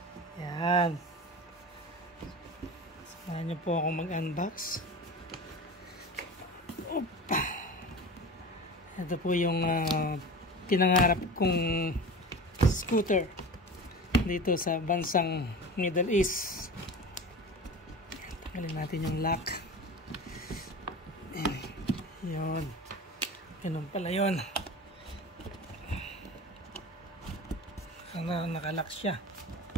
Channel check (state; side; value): normal; both; correlation 0.32